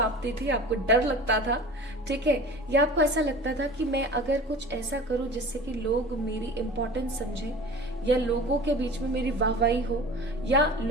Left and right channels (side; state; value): both; normal; correlation 0.38